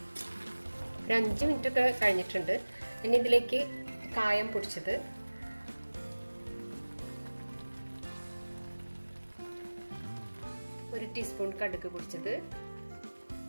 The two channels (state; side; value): inverted; both; correlation -1.00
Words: ഒരു 5 മിനിറ്റ് ഒക്കെ കഴിഞ്ഞിട്ടുണ്ട്. ഇനി ഇതിലേക്ക് കായം പൊടിച്ചത്, ഒരു ടീസ്പൂൺ കടുക് പൊടിച്ചത്,